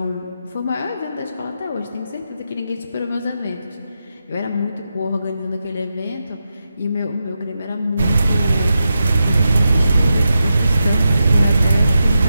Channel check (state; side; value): inverted; both; correlation -0.88